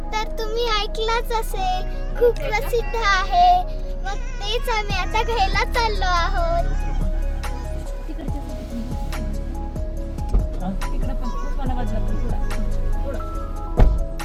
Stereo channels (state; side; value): identical; both; correlation 1.00